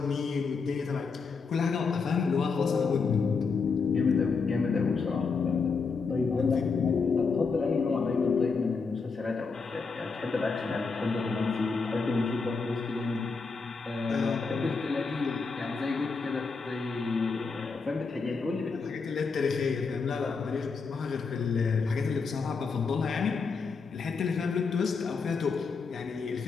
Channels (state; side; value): quieter; right; 4.8 dB